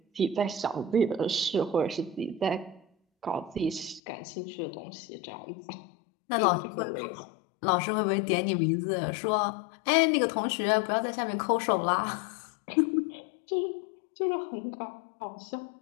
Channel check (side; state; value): right; drops out; at 4.0 s